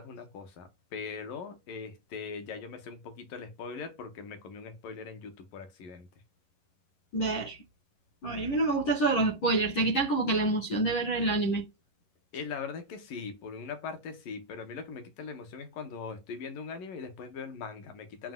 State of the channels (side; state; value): right; late; 11 ms